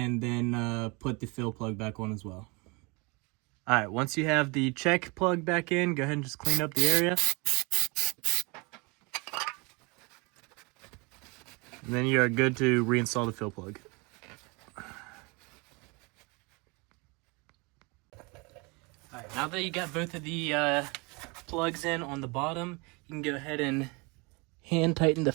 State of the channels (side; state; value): left; quieter; 28.4 dB